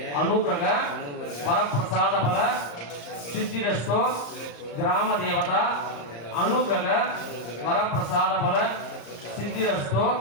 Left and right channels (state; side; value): late; right; 34 ms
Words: अनुग्रह वरप्रसाद बल सिद्धिरस्तु ग्राम देवता अनुग्रह वरप्रसाद बल सिद्धिरस्तु